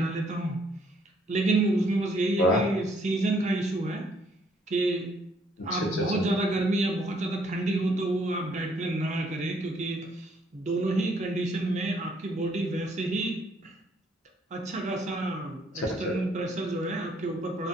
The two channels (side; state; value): both; normal; correlation 0.67